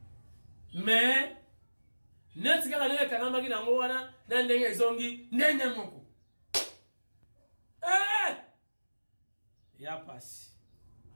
Net kaka ndenge kanamba ki nango wana na ndenge ezongi ndenge moko. Ya pasi.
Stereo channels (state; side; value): inverted; both; correlation -1.00